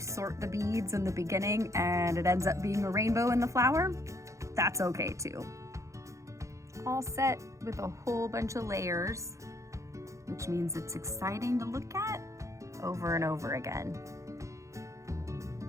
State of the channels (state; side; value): late; left; 0.15 ms